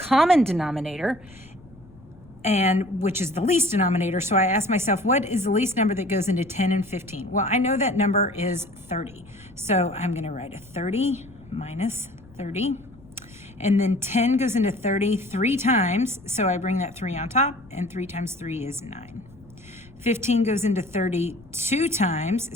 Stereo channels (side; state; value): left; noise; rumble, 23 dB below the sound